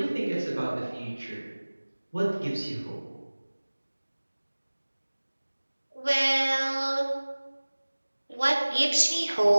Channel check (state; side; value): inverted; both; correlation -1.00